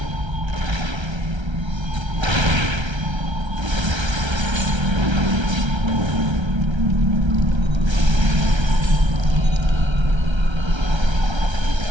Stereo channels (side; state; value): left; late; 1.3 ms